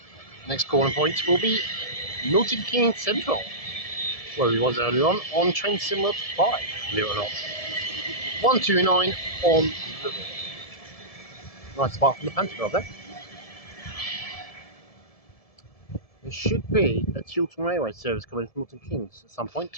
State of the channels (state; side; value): late; right; 1.7 ms